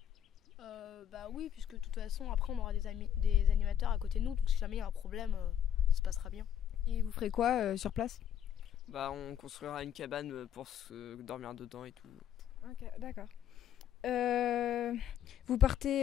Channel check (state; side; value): quieter; right; 9.8 dB